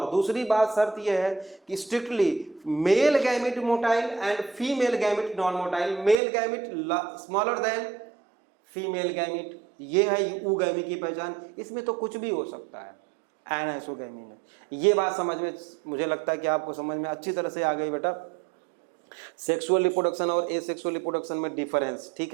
दूसरी बात शर्त यह है कि strictly male gamete motile and female gamete non motile, male gamete smaller than female gamete, ये है ऊगैमी की पहचान। इसमें तो कुछ भी हो सकता है एनाइसोगैमी में। ये बात समझ में, मुझे लगता है कि आपको समझ में अच्छी तरह से आ गई बेटा सेक्सुअल रिप्रोडक्शन और एसेक्सुअल रिप्रोडक्शन में डिफरेंस,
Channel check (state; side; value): drops out; left; at 6.2 s